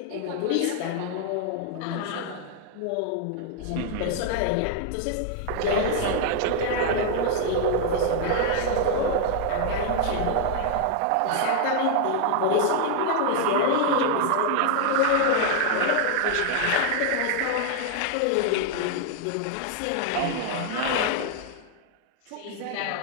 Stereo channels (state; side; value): different; both; correlation 0.00